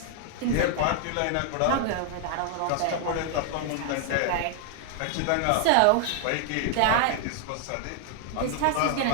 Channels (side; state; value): both; different; correlation 0.00